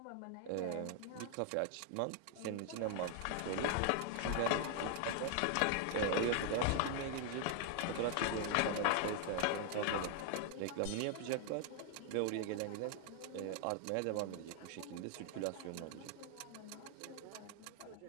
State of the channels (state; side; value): different; both; correlation 0.00